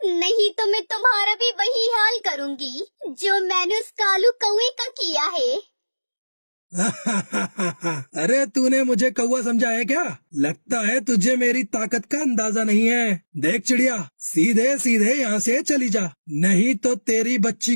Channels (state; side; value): inverted; both; correlation -1.00